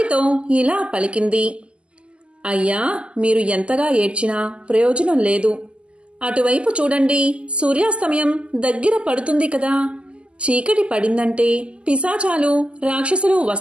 ఇలా పలికింది: అయ్యా, మీరు ఎంతగా ఏడ్చినా ప్రయోజనం లేదు. అటువైపు చూడండి, సూర్యాస్తమయం దగ్గర పడుతుంది కదా. చీకటి పడిందంటే పిశాచాలు, రాక్షసులు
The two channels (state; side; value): late; left; 0.053 ms